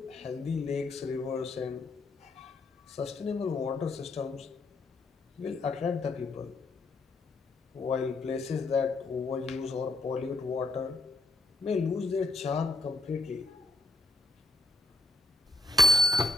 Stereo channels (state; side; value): quieter; right; 3.1 dB